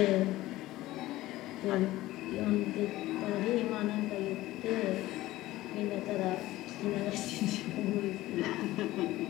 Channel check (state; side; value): quieter; right; 16.8 dB